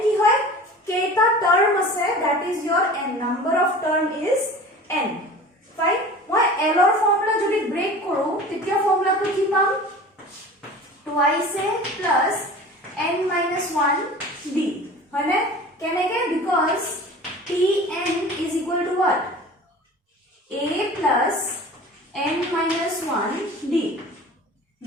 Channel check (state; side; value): normal; both; correlation 0.39